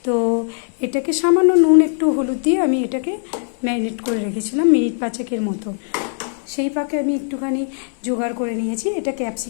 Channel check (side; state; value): right; silent; digital silence